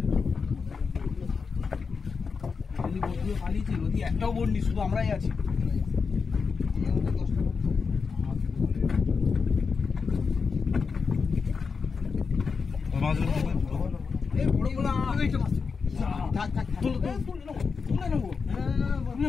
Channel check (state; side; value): quieter; right; 5.2 dB